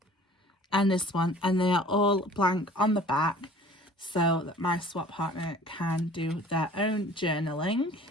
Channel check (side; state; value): both; normal; correlation 0.48